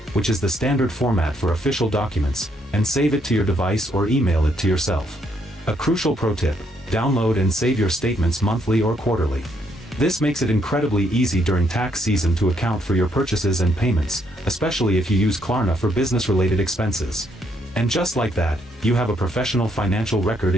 which is the standard format for official documents, and save it to your device or email it to yourself. A crucial pro tip: download and save your statements monthly or quarterly. This makes it incredibly easy during tax season to account for your purchases and payments, especially if you use Klarna for business-related expenses. And just like that, you have a professional financial record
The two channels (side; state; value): both; normal; correlation 0.73